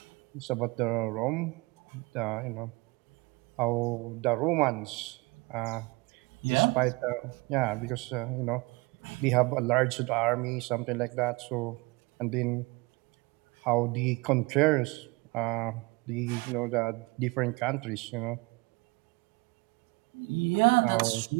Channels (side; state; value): left; quieter; 25.7 dB